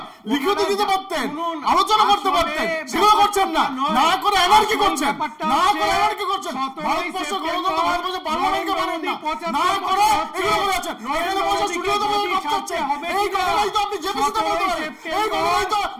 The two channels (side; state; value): both; identical; correlation 1.00